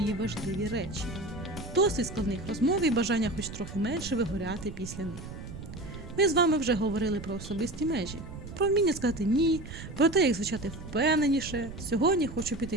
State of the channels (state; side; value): noise; right; rumble, 11 dB below the sound